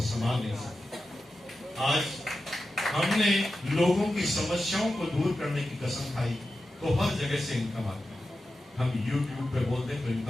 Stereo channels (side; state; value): both; normal; correlation 0.92